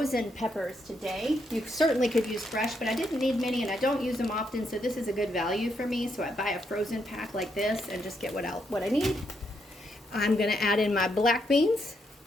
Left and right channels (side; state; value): both; normal; correlation 0.78